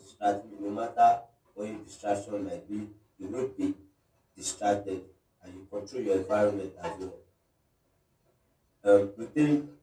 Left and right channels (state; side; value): identical; both; correlation 1.00